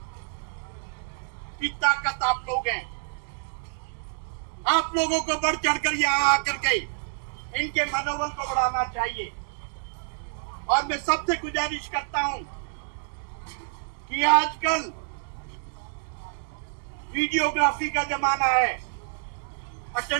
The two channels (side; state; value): left; silent; digital silence